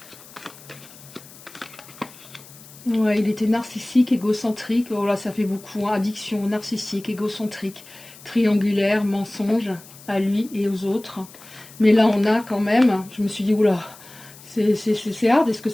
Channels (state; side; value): noise; left; hiss, 20 dB below the sound